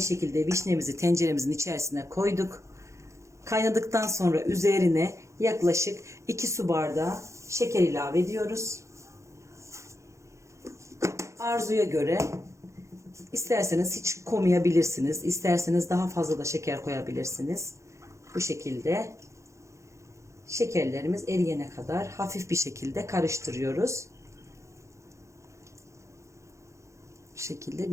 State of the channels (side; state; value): left; late; 0.14 ms